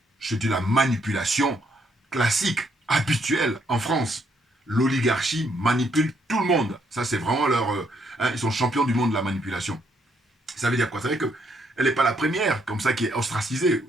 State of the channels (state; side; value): normal; both; correlation 0.73